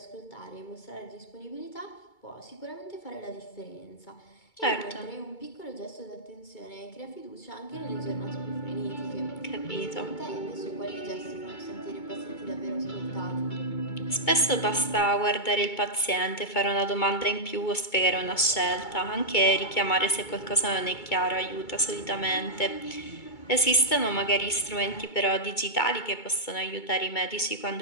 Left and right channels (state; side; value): late; right; 2.2 ms